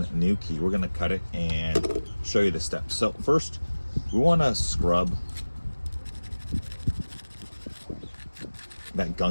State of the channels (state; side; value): inverted; both; correlation -1.00